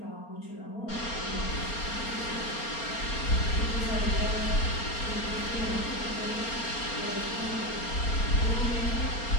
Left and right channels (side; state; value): right; late; 4.3 ms